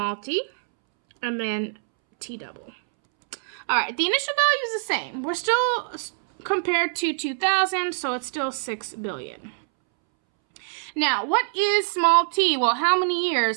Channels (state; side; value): silent; left; 62 dB below the other